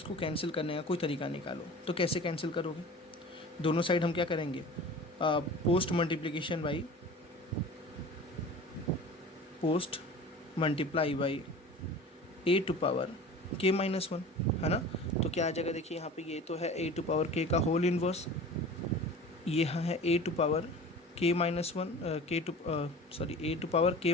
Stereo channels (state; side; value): normal; both; correlation 0.39